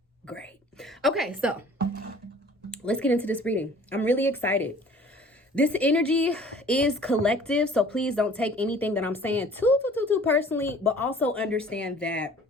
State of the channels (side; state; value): both; normal; correlation 0.50